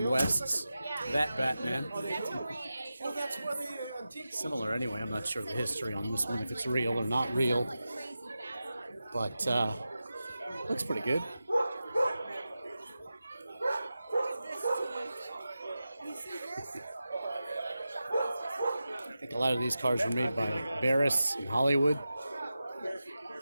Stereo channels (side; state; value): both; inverted; correlation -0.93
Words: West's That Batman. Similar anyway. I'm not sure the history on this one, if it's real or not real. But looks pretty good. I think a lot of these cars were made by Barris in Hollywood